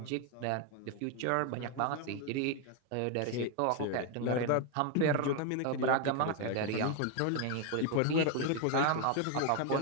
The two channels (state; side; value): different; both; correlation 0.01